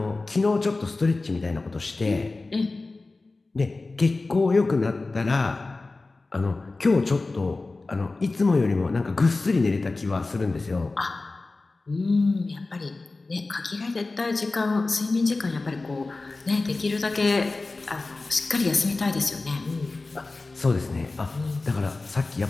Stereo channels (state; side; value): quieter; right; 3.4 dB